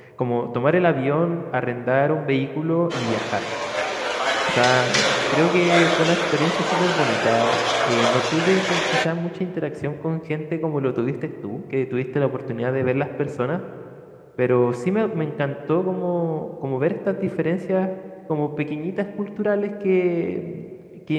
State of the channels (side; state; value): both; identical; correlation 1.00